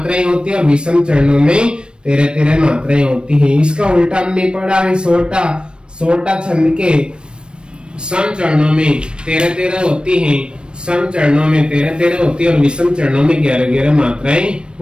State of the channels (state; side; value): late; left; 0.054 ms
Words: होती है और विषम चरणों में 13-13 मात्राएं होती हैं। इसका उल्टा हमने पढ़ा है सोटा छंद के सम चरणों में 13-13 होती हैं, सम चरणों में 13-13 होती है और विषम चरणों में 11-11 मात्राएं